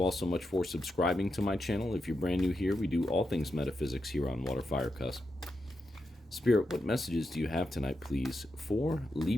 all so much for subscribing to my channel. If you're brand new here, we do all things metaphysics here on WATERFIRECUSP. Spirit, what messages do you have tonight, please, for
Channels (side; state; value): both; normal; correlation 0.86